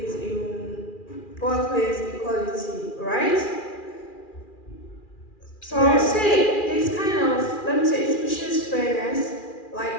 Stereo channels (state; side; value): late; right; 2.4 ms